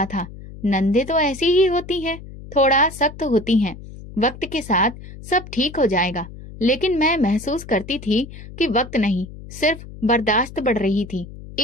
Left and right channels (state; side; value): noise; left; hum, 15 dB below the sound